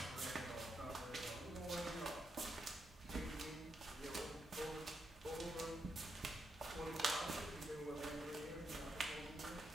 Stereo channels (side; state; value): both; normal; correlation 0.82